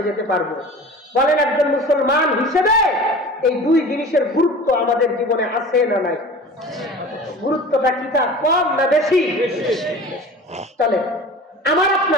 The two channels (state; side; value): normal; both; correlation 0.39